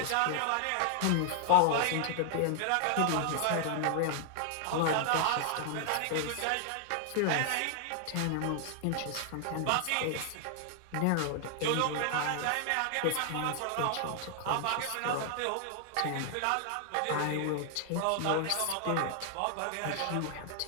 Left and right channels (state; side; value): different; both; correlation 0.00